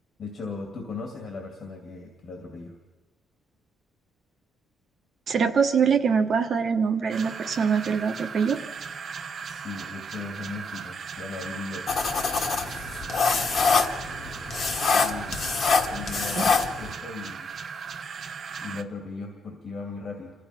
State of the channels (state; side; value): normal; both; correlation 0.74